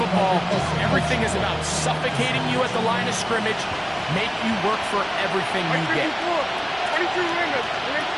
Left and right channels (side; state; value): both; identical; correlation 1.00